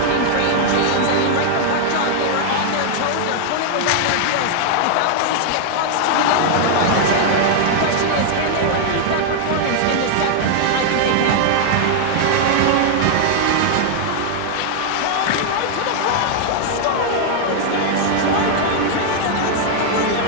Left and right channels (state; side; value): different; both; correlation 0.00